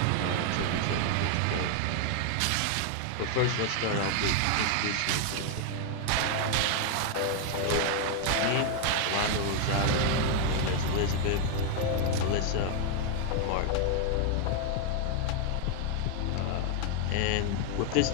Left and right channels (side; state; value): both; different; correlation 0.00